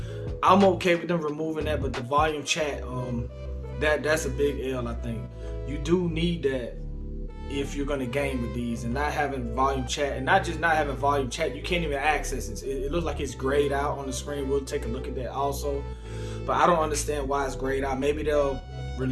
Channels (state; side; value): identical; both; correlation 1.00